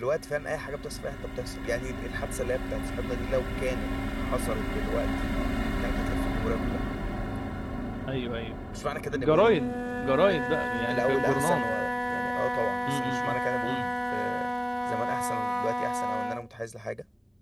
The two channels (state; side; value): identical; both; correlation 1.00